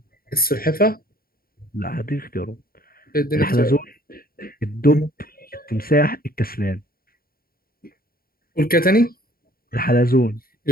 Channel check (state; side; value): late; right; 0.43 ms